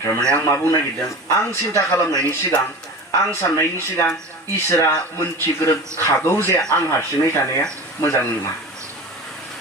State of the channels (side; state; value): both; normal; correlation 0.33